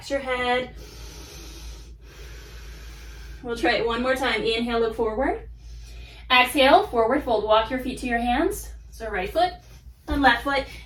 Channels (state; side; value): identical; both; correlation 1.00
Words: your head. We'll try it one more time. Inhale, look forward. Exhale, forward fold. Walk your feet to your hands. So right foot and left foot.